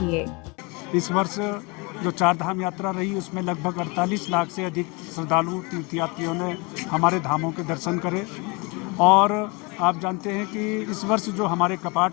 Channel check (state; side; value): quieter; right; 28.3 dB